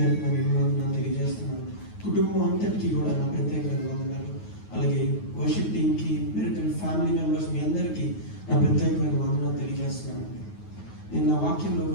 నేను ఎన్నో తెలియజేస్తున్నాను. కుటుంబం అంతటికీ కూడా నా ప్రత్యేక వందనాలు. అలాగే వర్షిప్ టీమ్కి, మిరకల్ ఫ్యామిలీ మెంబర్స్ మీ అందరికీ నా ప్రత్యేకమైన వందనాలు తెలియజేస్తున్నాను. నేను నా వాక్యంలో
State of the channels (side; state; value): right; late; 9.4 ms